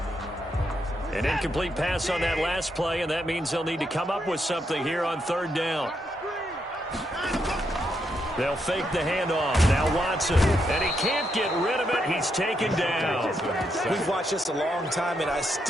An incomplete pass on that last play, and that means they'll need to come up with something here on 3rd down. They'll fake the handoff. Now Watson. And he can't get rid of it. He's taken down. We've watched this a long time, and I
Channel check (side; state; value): both; normal; correlation 0.80